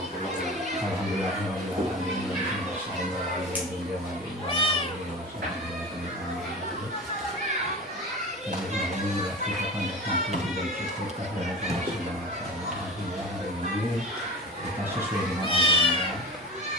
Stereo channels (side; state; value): both; normal; correlation 0.32